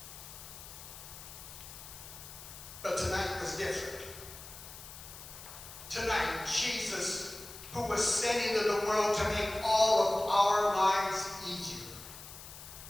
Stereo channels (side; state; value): left; noise; hiss, 14 dB below the sound